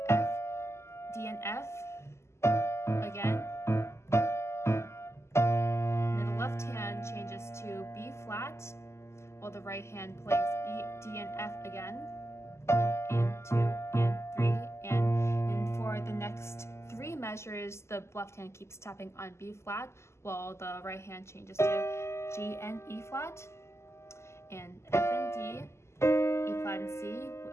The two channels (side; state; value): right; late; 0.13 ms